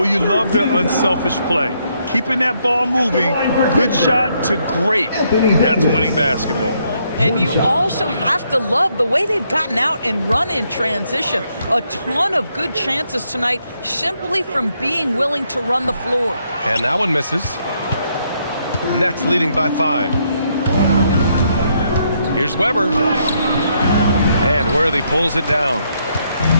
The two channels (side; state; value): both; inverted; correlation -0.74